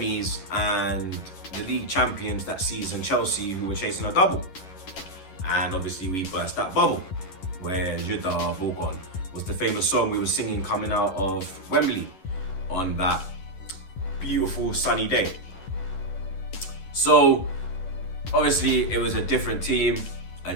and the league champions that season, Chelsea, who were chasing a double. And obviously we burst that bubble where Je t'ai Bourgogne was the famous song we were singing coming out of Wembley on that beautiful sunny day. So obviously it was a different team, a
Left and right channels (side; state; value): right; late; 11 ms